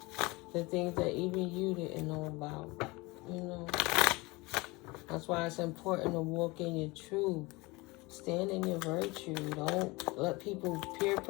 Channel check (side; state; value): right; quieter; 23.8 dB